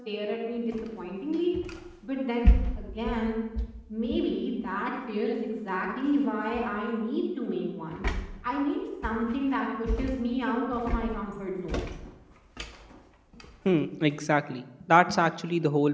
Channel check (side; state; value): both; identical; correlation 1.00